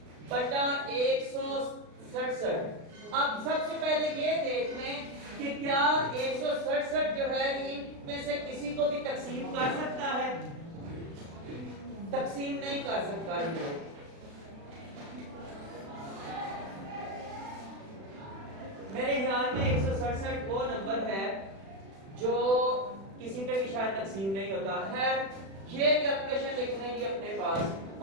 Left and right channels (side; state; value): left; late; 36 ms